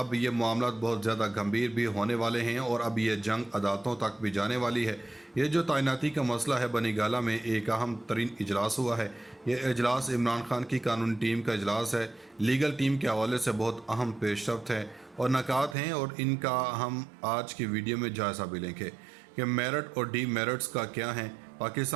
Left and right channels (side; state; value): left; drops out; at 15.8 s